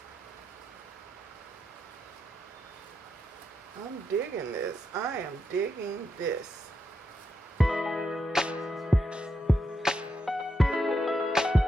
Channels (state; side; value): normal; both; correlation 0.83